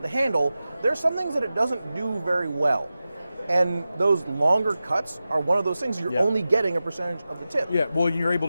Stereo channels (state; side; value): inverted; both; correlation -0.94